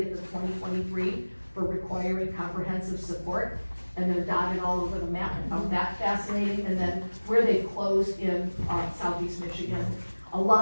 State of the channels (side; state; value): both; inverted; correlation -1.00